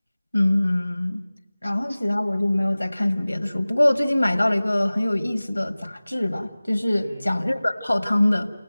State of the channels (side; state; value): both; inverted; correlation -0.99